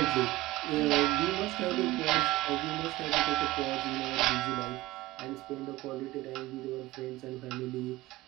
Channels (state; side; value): quieter; left; 18.6 dB